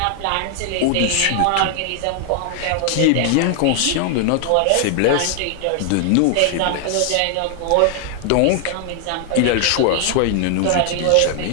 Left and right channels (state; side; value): different; both; correlation 0.00